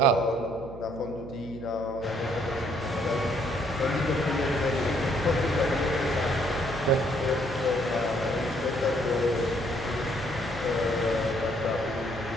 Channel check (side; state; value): right; noise; hum, 15 dB below the sound